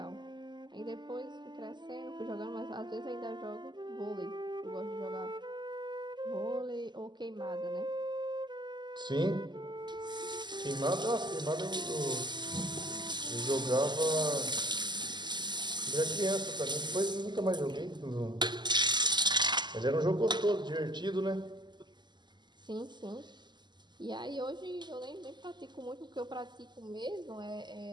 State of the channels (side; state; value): left; late; 0.21 ms